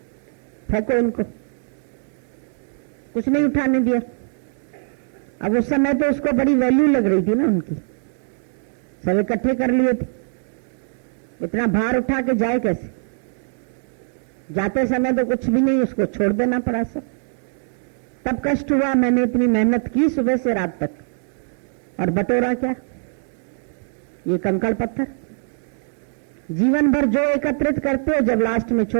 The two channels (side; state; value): left; silent; digital silence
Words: फेंको इनको। कुछ नहीं उठाने दिया। अब उस समय तो उसको बड़ी वैल्यू लग रही थी ना उनकी, सब इकट्ठे कर लिए थे, इतना भार उठा के जाए कैसे? जाते समय तो कुछ भी नहीं, उसको छोड़ देना पड़ा सब। तब कष्ट हुआ, मैंने इतनी मेहनत की सुबह से रात तक, और बटोरा क्या? ये कंकड़ पत्थर। जीवन भर जो एकत्रित करते हो, जब लास्ट में